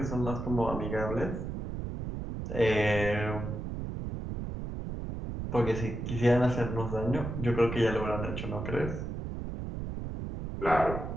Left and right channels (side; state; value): right; noise; rumble, 5 dB below the sound